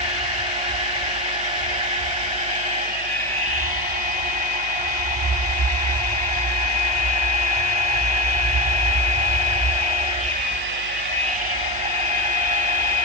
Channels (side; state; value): right; noise; hum, 16 dB below the sound